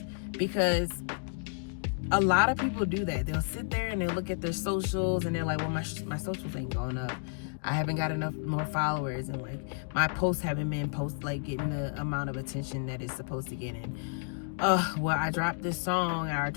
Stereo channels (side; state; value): right; silent; digital silence